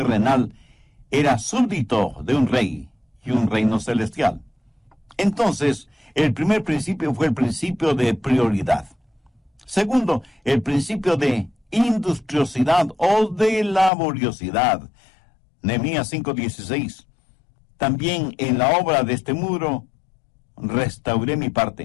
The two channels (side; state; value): right; drops out; at 13.9 s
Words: era súbdito de un rey y un reino celestial. Entonces, el primer principio fue el principio de prioridad. Segundo, el principio de industriosidad o de laboriosidad. Nehemías 5:16. También en la obra de este muro restauré mi